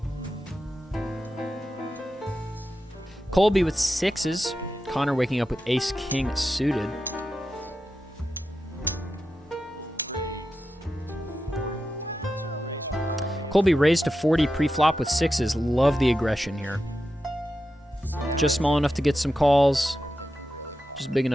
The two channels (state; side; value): normal; both; correlation 0.90